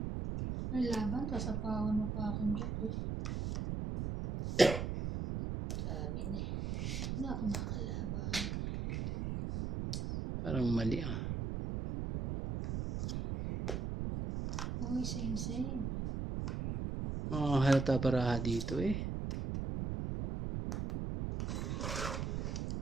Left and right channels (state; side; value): noise; right; rumble, 2 dB below the sound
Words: May laban, kasapawan mo pa akong jacket. Sabi niya, hindi ako makalaban. Parang mali ah. Uy, same. Halata baraha dito eh.